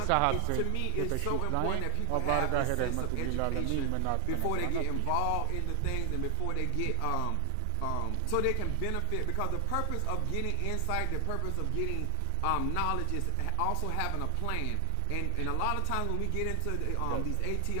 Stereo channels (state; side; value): different; both; correlation 0.00